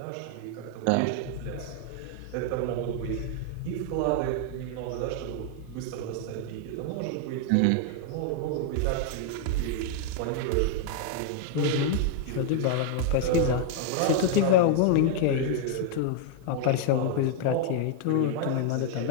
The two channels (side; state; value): both; different; correlation -0.01